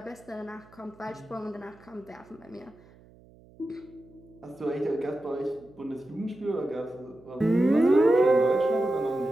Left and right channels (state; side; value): noise; right; hum, 25 dB below the sound